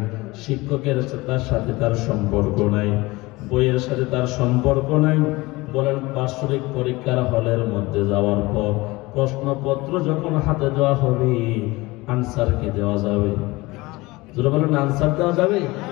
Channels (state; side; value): quieter; right; 21.6 dB